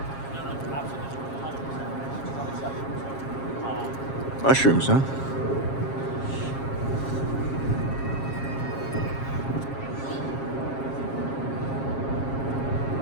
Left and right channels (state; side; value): late; right; 7.4 ms